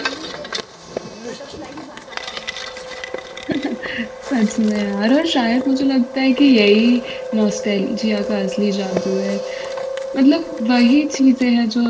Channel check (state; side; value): identical; both; correlation 1.00